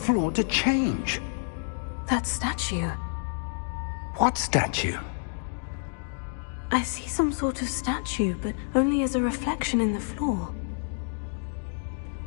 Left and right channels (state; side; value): silent; right; digital silence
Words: to change. That statue. What statue? I see some sort of statue, but only as a reflection in the floor.